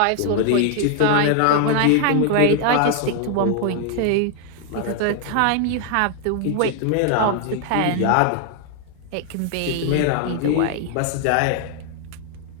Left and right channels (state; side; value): different; both; correlation 0.00